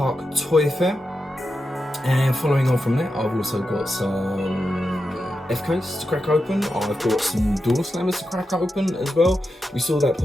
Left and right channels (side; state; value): both; normal; correlation 0.89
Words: Toy Fair, and following on from that I've also got some FKs to crack open. I've got some door slammers to crack open as well. We saw that